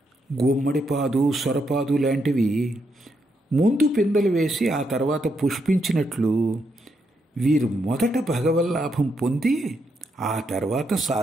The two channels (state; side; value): normal; both; correlation 0.79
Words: గుమ్మడిపాదు, సొరపాదు లాంటివి ముందు పిందెలు వేసి ఆ తర్వాత పుష్పించినట్లు వీరు మొదట భగవల్లాభం పొంది ఆ తర్వాత